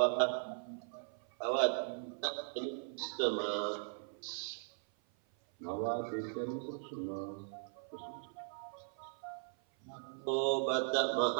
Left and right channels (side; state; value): left; silent; 52 dB below the other